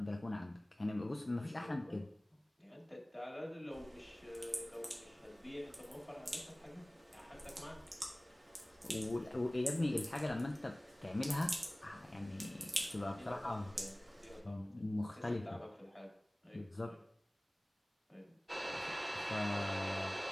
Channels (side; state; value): both; normal; correlation 0.98